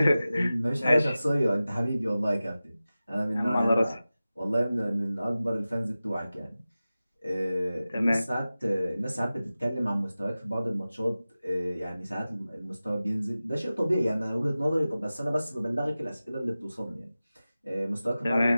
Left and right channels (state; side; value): inverted; both; correlation -0.96